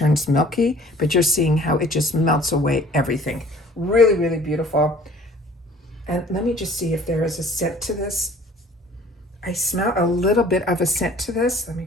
milky, but you're seeing how it just melts away everything. Really, really beautiful. And let me just see if there is a scent to this. I smell a little bit of a scent to this. Let me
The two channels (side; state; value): both; normal; correlation 0.51